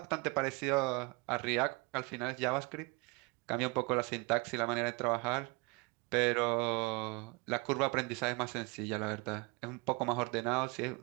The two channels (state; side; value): quieter; left; 28.0 dB